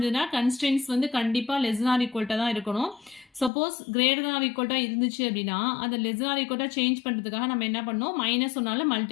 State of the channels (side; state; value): right; drops out; at 3.5 s